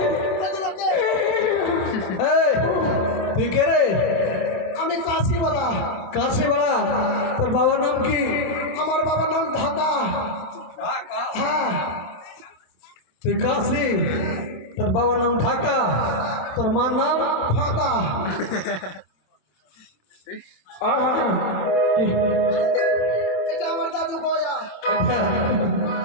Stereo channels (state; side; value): late; right; 26 ms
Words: তুই কে রে? আমি কাশিওয়ালা। কাশিওয়ালা? তোর বাবার নাম কি? আমার বাবার নাম ঢাকা। হ্যাঁ। তুই কাশি, তোর বাবার নাম ঢাকা, তোর মার নাম ফাঁকা। এটা আমার দাদু গয়া।